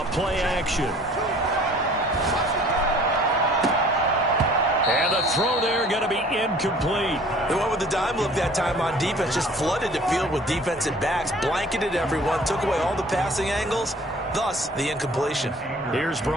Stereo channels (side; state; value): both; normal; correlation 0.51